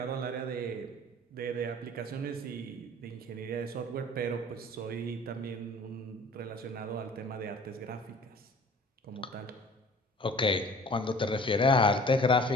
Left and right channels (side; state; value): both; normal; correlation 0.48